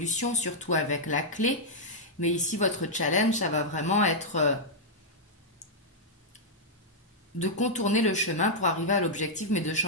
surtout avec la clé. Mais ici votre challenge, ça va vraiment être de contourner le chemin pour arriver à l'objectif, mais de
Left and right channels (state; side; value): normal; both; correlation -0.06